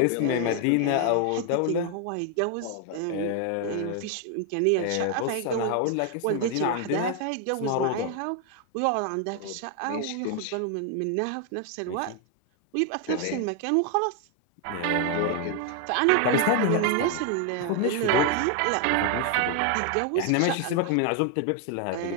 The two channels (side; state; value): both; different; correlation 0.00